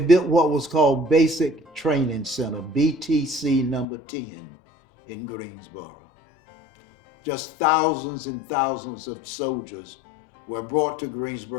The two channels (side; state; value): right; drops out; at 3.9 s